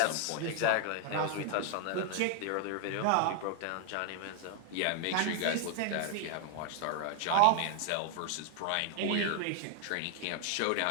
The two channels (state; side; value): different; both; correlation 0.00